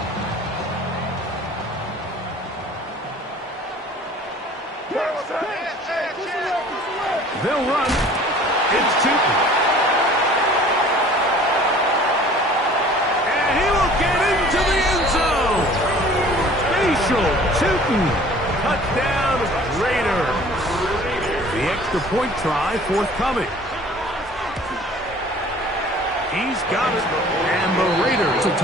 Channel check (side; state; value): both; normal; correlation 0.49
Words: They'll run. It's Tootin. And he will get into the end zone. Facial Tootin. Touchdown, Raiders. The extra point try forthcoming. He's got it. And the Raiders to